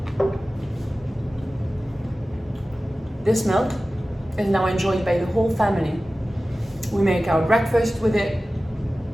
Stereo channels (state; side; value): normal; both; correlation 0.96